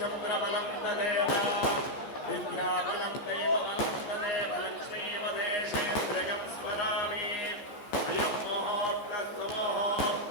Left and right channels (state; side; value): late; right; 14 ms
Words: తదేవ విద్యాబలం దైవబలం తదేవ లక్ష్మీపదేశేంద్రియం స్మరామి అయం ముహూర్తస్తు